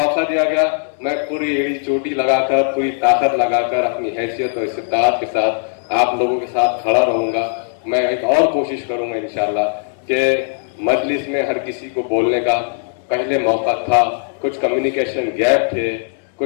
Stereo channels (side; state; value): right; silent; digital silence